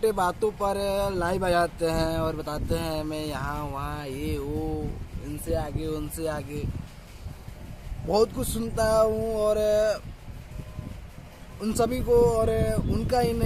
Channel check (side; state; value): both; identical; correlation 1.00